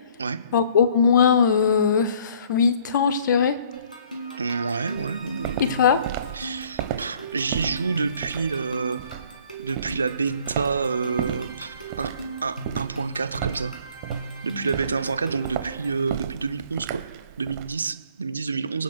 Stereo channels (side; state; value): both; inverted; correlation -0.58